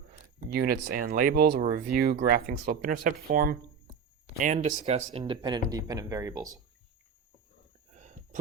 units and labels. We'll review graphing slope-intercept form, and discuss independent and dependent variables.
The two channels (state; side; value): quieter; left; 6.4 dB